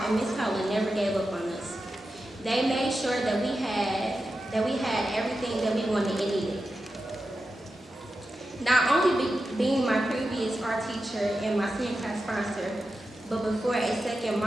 and Ms. Cullen never gave up on us. They made sure that we had everything that we wanted and needed. Not only being my previous art teacher and my senior class sponsor, but before a second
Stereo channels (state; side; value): normal; both; correlation 0.91